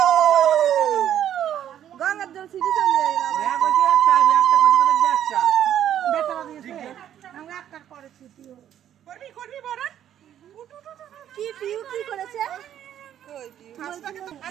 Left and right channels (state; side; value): quieter; left; 10.6 dB